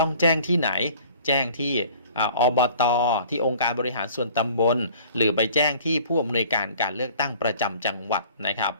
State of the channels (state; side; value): inverted; both; correlation -0.50